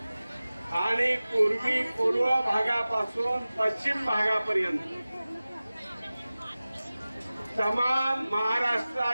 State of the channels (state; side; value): inverted; both; correlation -0.97